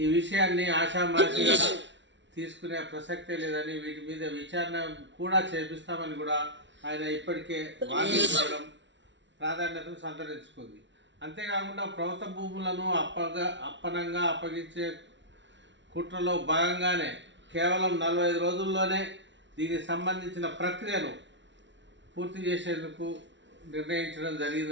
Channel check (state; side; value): late; left; 0.53 ms